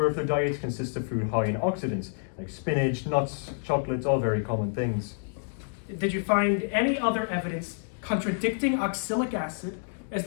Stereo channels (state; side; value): silent; right; digital silence